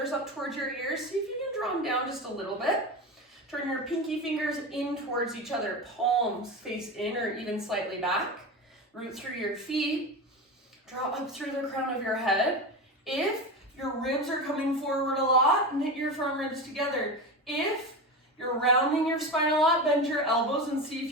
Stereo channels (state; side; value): normal; both; correlation 0.23